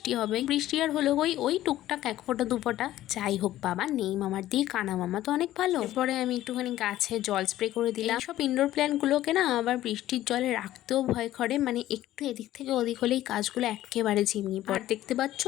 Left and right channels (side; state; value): right; quieter; 14.2 dB